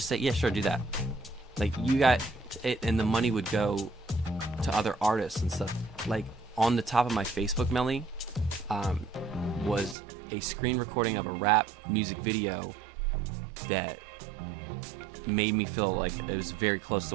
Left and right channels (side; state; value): left; drops out; at 10.0 s